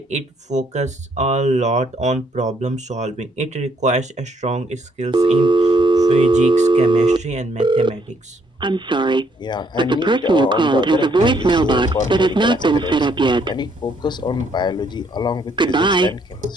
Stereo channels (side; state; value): both; normal; correlation 0.70